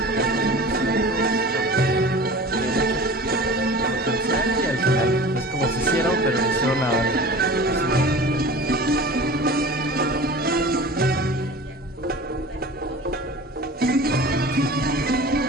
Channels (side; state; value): both; normal; correlation 0.38